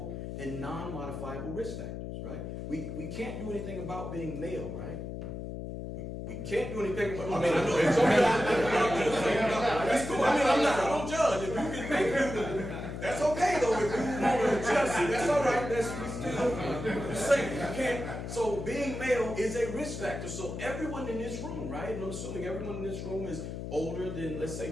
and non-modifiable risk factors, right? We can't do anything about being male, right? We can't do anything about, I know it's okay. It's cool. I don't judge. If you can make it, that's okay though. If you want to adjust it, that's all right. We still saying you can't. So being male is a risk factor. So everyone in this room, right? And I'm assuming everyone in this room is older than, let's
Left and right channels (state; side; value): noise; left; hum, 7 dB below the sound